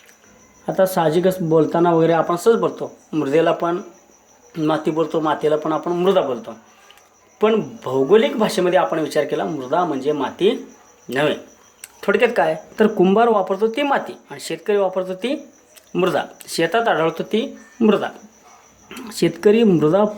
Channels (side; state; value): both; identical; correlation 1.00